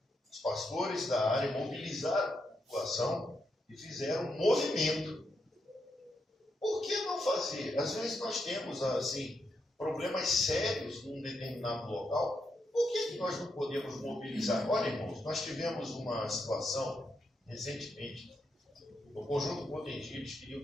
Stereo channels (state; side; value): normal; both; correlation 0.82